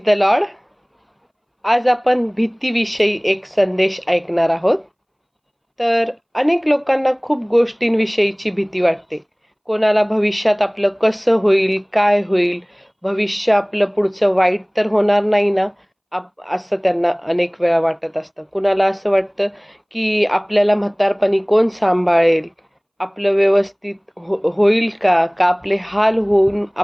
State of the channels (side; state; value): both; identical; correlation 1.00